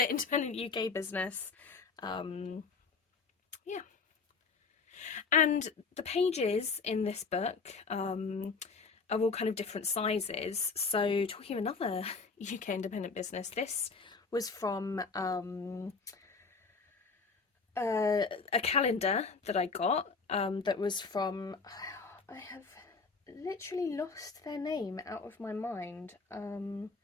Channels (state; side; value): quieter; right; 4.7 dB